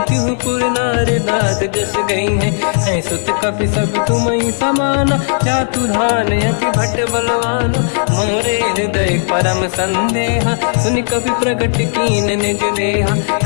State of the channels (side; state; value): right; silent; digital silence